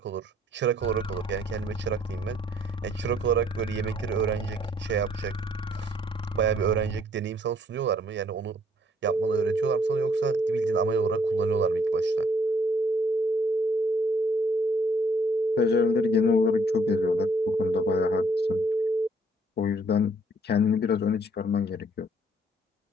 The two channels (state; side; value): normal; both; correlation 0.64